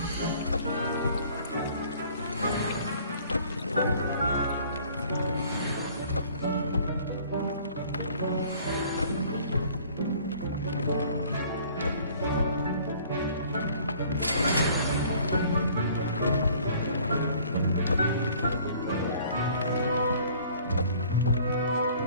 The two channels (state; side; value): inverted; both; correlation -0.54